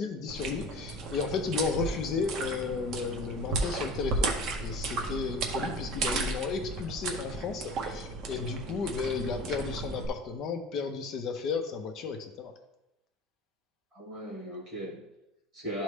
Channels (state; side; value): normal; both; correlation 0.39